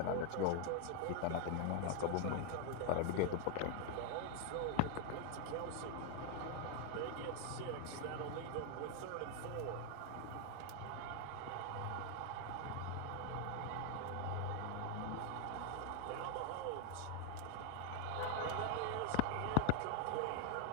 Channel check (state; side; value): different; both; correlation 0.00